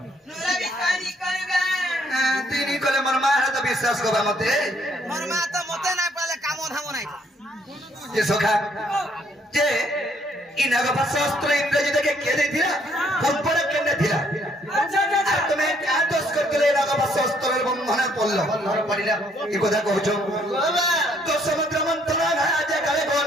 তুই নি কলে মোর মা হাতে বিশ্বাস করবা মতে मोर मां तो मते ना पाले काम धाम নাই যে সখা যে ই নাগপা শাস্ত্র ইংরেজি দেখে কে দিলা পম্পরে কেনে দিলা আর তুমি কা দোষ করলে নাগপা শাস্ত্রের বন্ধনে পড়ল বন্ধন পড়িলা এই কথা কইছ তো সমুদ্র মন্থন আজ কালে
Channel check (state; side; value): normal; both; correlation 0.67